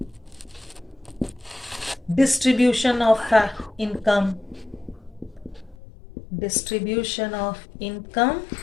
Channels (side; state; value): right; drops out; at 5.8 s